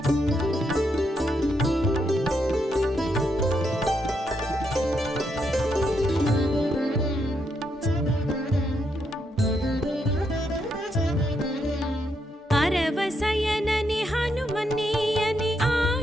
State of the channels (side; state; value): both; normal; correlation 0.79